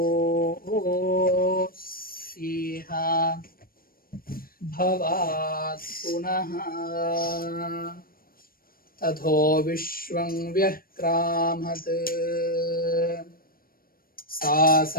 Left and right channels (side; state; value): right; late; 0.42 ms